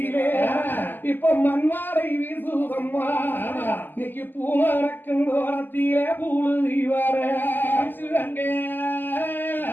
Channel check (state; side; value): late; right; 0.090 ms